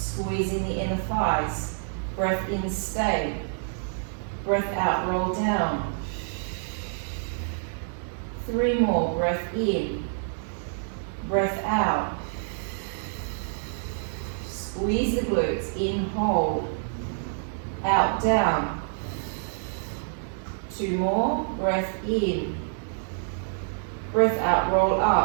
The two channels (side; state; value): left; silent; 60 dB below the other